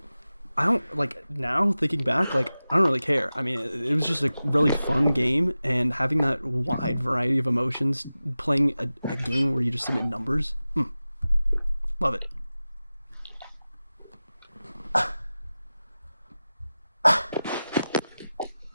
I don't, like, now thinking back, like, I don't really care. I mean, it was just a really fun game, and having that wide variety of emotions, playing a game where you just submit numbers, love it.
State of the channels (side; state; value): both; inverted; correlation -0.95